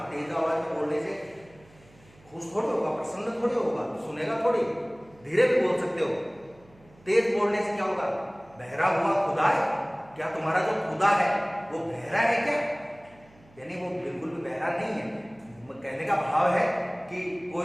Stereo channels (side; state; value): right; noise; hum, 27 dB below the sound